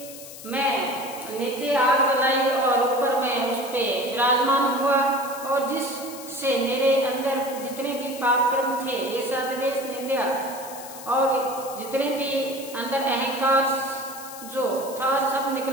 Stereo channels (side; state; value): left; noise; hiss, 14 dB below the sound